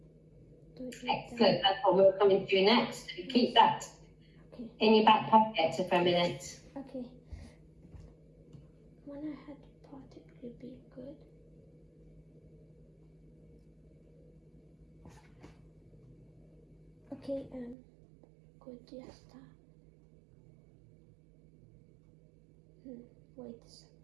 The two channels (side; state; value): left; drops out; at 17.8 s